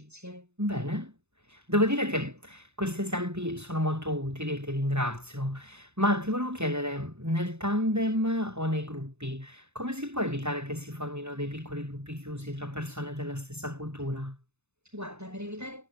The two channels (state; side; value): late; left; 0.81 ms